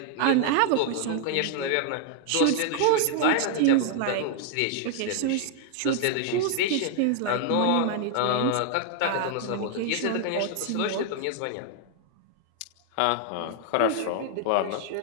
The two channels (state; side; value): different; both; correlation 0.00